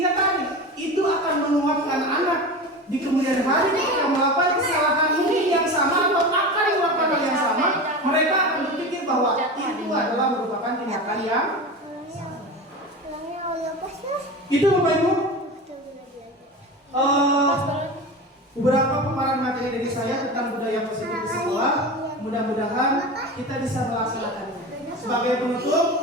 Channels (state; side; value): normal; both; correlation 0.28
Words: tadi itu akan menguatkan anak di kemudian hari ketika melakukan kesalahan ini yang sama atau akan melakukan hal yang sama, mereka akan berpikir bahwa itu adalah merupakan tindakan yang itu Bapak Ibu. Beberapa paparan materi dari saya tentang budaya positif di sekolah. Mudah-mudahan kita bisa melaksanakannya. Sebagai penutup,